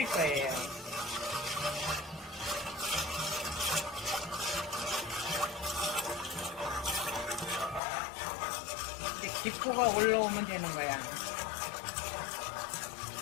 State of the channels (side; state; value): right; drops out; at 7.8 s